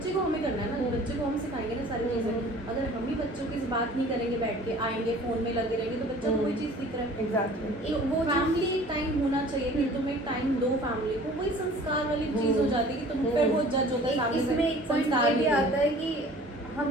को हमें करना है ना, बच्चे को हम सिखाएंगे ना सारी चीज़ें। अगर हम ही बच्चों की बात नहीं करेंगे, बैठ के आएंगे फोन में लगे रहेंगे, तो बच्चा कोई चीज़ सीख रहा है। एग्जैक्टली। वो फैमिली टाइम होना चाहिए कि तुम एक टाइम दो फैमिली को, वही संस्कार वाली चीज़ हो जाती है कि तुम फिर वो जज होता है सामने से, इसमें एक पॉइंट संस्कार ये भी नहीं है। आता है कि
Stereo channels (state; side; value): normal; both; correlation 0.48